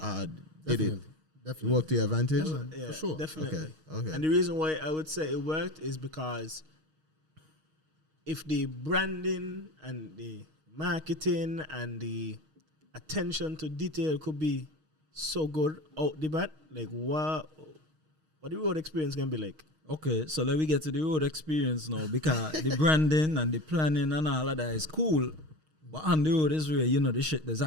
Did it Definitely. work to your advantage? Yeah, for sure. Definitely. Okay. And the reason why I would say it worked is because if the branding and the marketing and the attention to detail could be so good out the bat, like what the road experience can be like. Okay, so let me get to the road experience now, because the branding and the planning and all of that is cool. But on the road is where, the shit that's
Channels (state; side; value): late; left; 6.4 ms